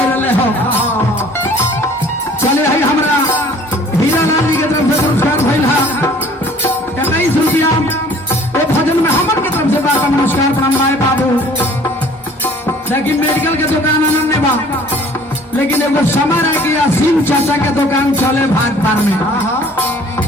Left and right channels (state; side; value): normal; both; correlation 0.52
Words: रहे हो चले है हमरा हीरा लाल जी के तरफ से पुरस्कार भइल है 21 रुपया वो भजन में हमन के तरफ से बार नमस्कार प्रणाम भाई बाबू लेकिन मेडिकल के दुकान आनंद बा लेकिन एगो समय रह गया सिंह चाचा के दुकान चले भाग पार में